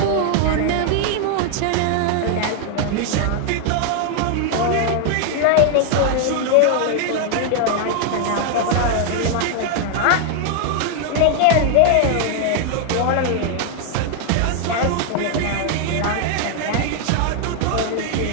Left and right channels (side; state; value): both; different; correlation 0.00